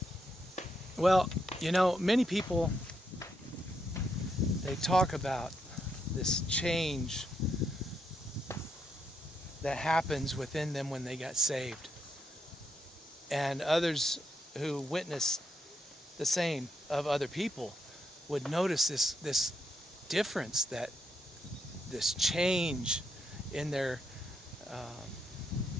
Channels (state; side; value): normal; both; correlation 0.79